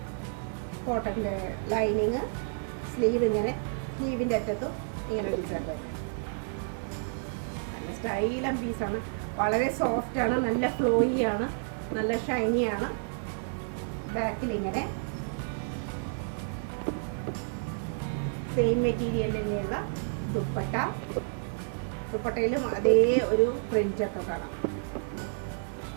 കോട്ടൻ്റെ ലൈനിങ്, സ്ലീവ് ഇങ്ങനെ, സ്ലീവിൻ്റെ അറ്റത്തും ഇങ്ങനെ ഡിസൈൻ തന്നെ. നല്ല സ്റ്റൈലൻ പീസാണ്, വളരെ സോഫ്റ്റാണ്, നല്ല ഫ്ലോയി ആണ്, നല്ല ഷൈനിയാണ്. ബാക്കിൽ ഇങ്ങനെ സെയിം മെറ്റീരിയൽ തന്നെയുള്ള ദുപ്പട്ട. ദുപ്പട്ടയിലും അതേ ഒരു പ്രിൻ്റൊക്കെ കാണാം.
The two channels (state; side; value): silent; left; 58 dB below the other